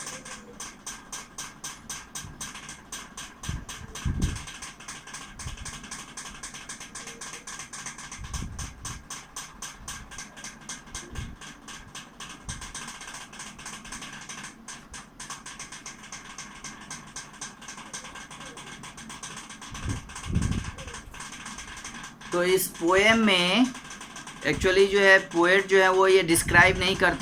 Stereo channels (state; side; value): identical; both; correlation 1.00